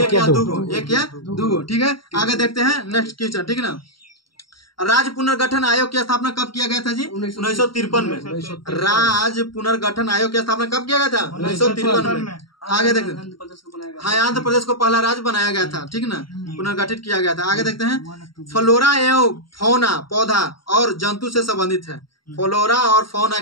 या 2 गो, ठीक है। आगे देखते हैं नेक्स्ट क्वेश्चन, ठीक है ना। राज्य पुनर्गठन आयोग की स्थापना कब किया गया था जी? 1953 में। राज्य पुनर्गठन आयोग की स्थापना कब किया गया था? 1953 में। आगे देखते हैं, हाँ, आंध्र प्रदेश को पहला राज्य बनाया गया था, ठीक ना, पुनर्गठित किया गया था। आगे देखते हैं, फ्लोरा एवं फौना पौधा और जंतु से संबंधित है। फ्लोरा और फौना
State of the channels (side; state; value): right; late; 0.73 ms